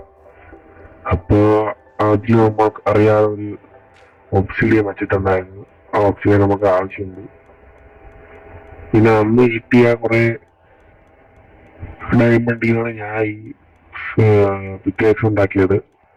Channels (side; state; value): both; identical; correlation 1.00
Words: അപ്പൊ അതിൽ നമുക്ക് അറിയാതെ ഒരു ഓക്സിഡിയൻ വെച്ചിട്ടുണ്ടായിരുന്നു. ആ ഓക്സിഡിയൻ നമുക്ക് ആവശ്യമുണ്ട്. പിന്നെ അന്ന് കിട്ടിയ കുറെ ഡയമണ്ടിനാണ് ഞാൻ ഈ പിക്കേക്സ് ഉണ്ടാക്കിയത്.